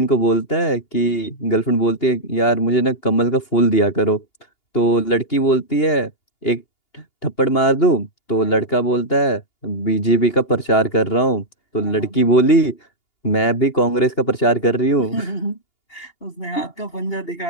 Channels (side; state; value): right; late; 2.8 ms